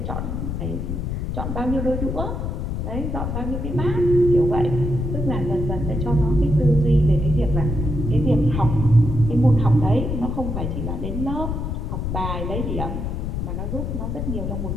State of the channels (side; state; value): left; noise; rumble, 3 dB below the sound